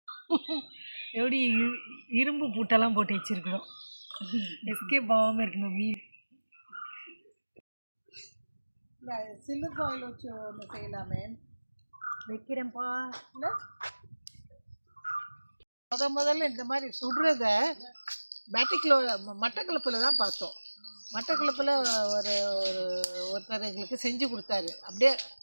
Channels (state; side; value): inverted; both; correlation -1.00